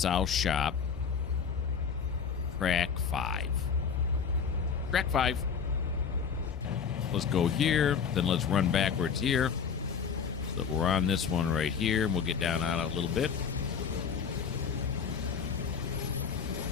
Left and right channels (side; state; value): right; quieter; 6.5 dB